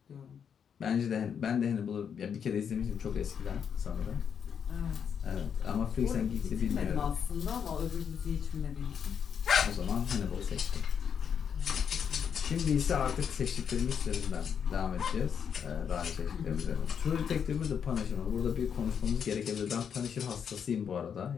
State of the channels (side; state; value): right; quieter; 7.5 dB